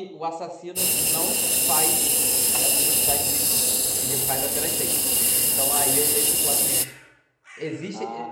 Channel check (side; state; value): both; identical; correlation 1.00